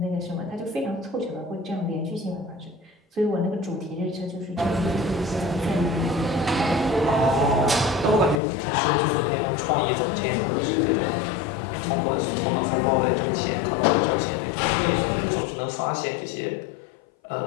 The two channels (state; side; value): drops out; right; at 8.4 s